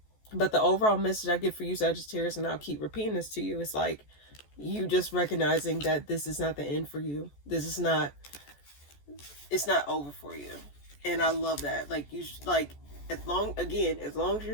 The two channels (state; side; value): late; right; 14 ms